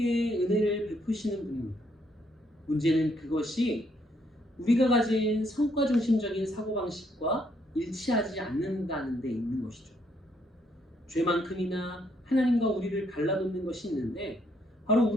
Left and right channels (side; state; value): both; normal; correlation 0.72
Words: 은혜를 베푸시는 분입니다. 문제는 그것이 우리가 가진 성과 중심적인 사고방식과 일치하지 않는다는 데 있는 것이죠. 죄만큼이나 하나님과 우리를 갈라놓는 것이 있는데 바로